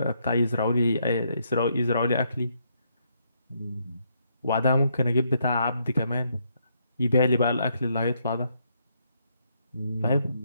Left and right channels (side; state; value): both; inverted; correlation -0.75